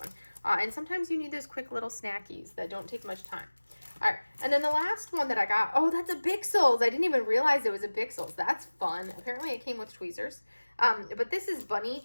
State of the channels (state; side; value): inverted; both; correlation -1.00